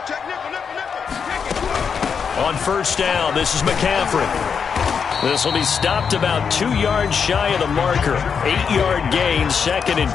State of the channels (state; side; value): quieter; right; 6.4 dB